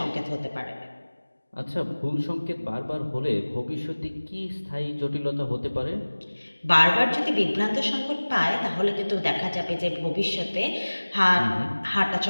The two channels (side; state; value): both; inverted; correlation -1.00